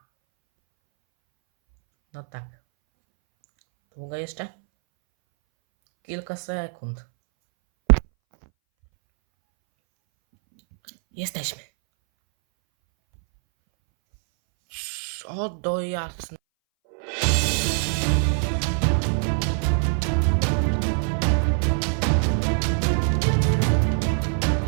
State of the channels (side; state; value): left; silent; 62 dB below the other